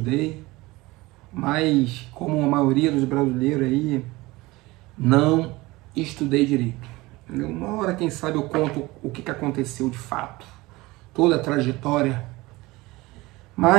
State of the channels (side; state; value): left; quieter; 21.0 dB